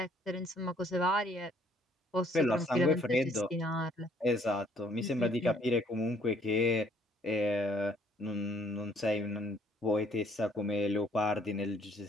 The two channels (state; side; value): normal; both; correlation 0.64